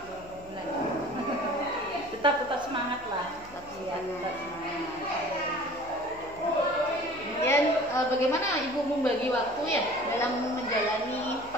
bulan. Tetap semangat lah. Tetap semangat. Kemudian bagaimana Ibu membagi waktu ya dalam menjalani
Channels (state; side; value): noise; left; hum, 21 dB below the sound